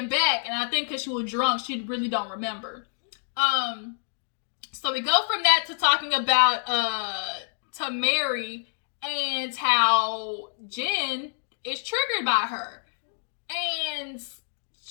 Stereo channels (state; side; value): silent; right; digital silence